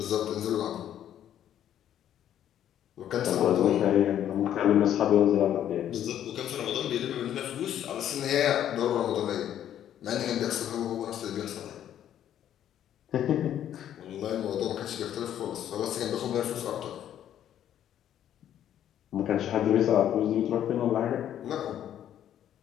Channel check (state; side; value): quieter; right; 10.7 dB